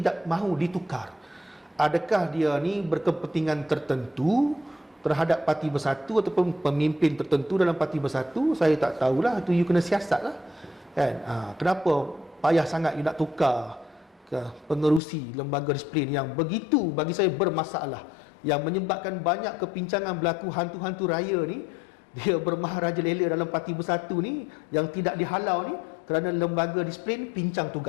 mahu ditukar. Adakah dia ni berkepentingan tertentu terhadap Parti Bersatu ataupun pemimpin tertentu dalam Parti Bersatu? Saya tak tahulah, itu you kena siasat lah kan. Kenapa payah sangat you nak tukar ke pengerusi lembaga disiplin yang begitu bagi saya bermasalah, yang menyebabkan banyak kepincangan berlaku, hantu-hantu raya ni dia bermaharajalela dalam Parti Bersatu ni yang tidak dihalau ni kerana lembaga disiplin pincang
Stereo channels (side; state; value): right; drops out; at 15.0 s